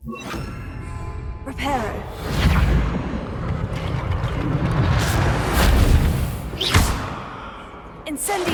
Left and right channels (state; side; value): identical; both; correlation 1.00